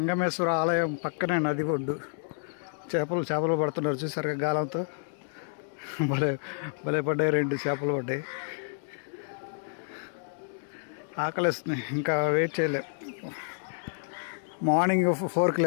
ఆలయం పక్కనే నది ఒడ్డు. చేపలు పడుతున్నారు చూసారుగా గాలంతో. భలే భలే పడ్డాయి, 2 చేపలు పడ్డాయి. ఆకలిస్తున్నాయి, ఇంకా వెయిట్ చేయలేం. మార్నింగ్ 4కి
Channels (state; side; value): silent; right; digital silence